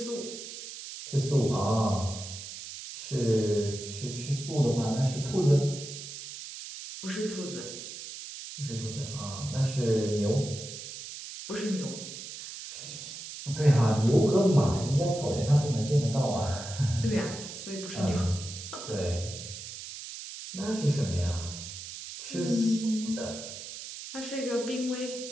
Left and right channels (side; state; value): right; noise; hiss, 10 dB below the sound